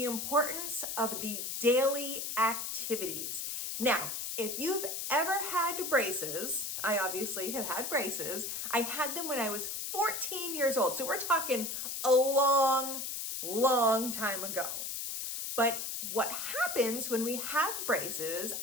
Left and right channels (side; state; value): left; noise; hiss, 4 dB below the sound